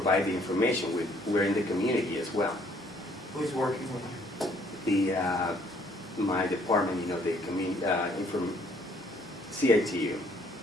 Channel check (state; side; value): normal; both; correlation 0.63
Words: the information. We're in the community as well. Who's working with you? My department, the community, CITU